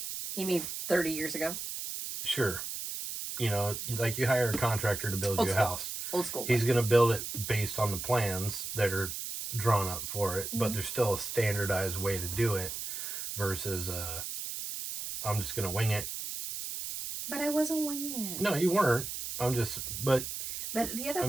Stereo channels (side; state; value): right; noise; hiss, 6 dB below the sound